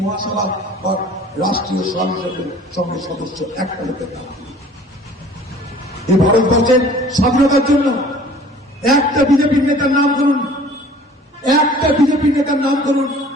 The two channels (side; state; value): both; normal; correlation 0.50